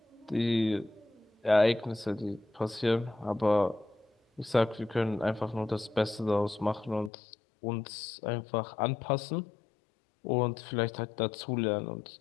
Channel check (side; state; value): right; drops out; at 7.1 s